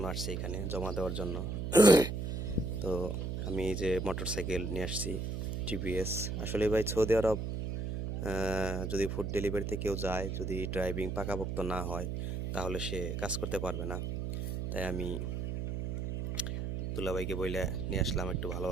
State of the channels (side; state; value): right; noise; hum, 3 dB below the sound